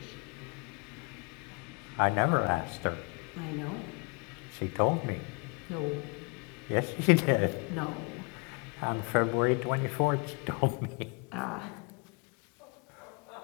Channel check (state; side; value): quieter; right; 33.0 dB